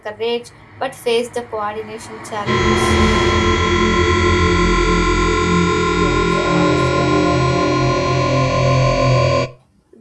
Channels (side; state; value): both; identical; correlation 1.00